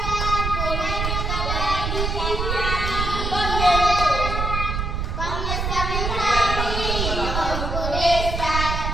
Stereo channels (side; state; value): right; noise; rumble, 2 dB below the sound